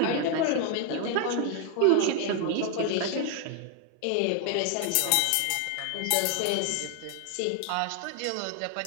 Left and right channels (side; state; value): both; different; correlation 0.00